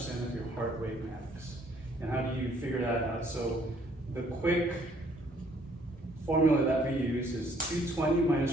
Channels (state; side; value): normal; both; correlation 0.63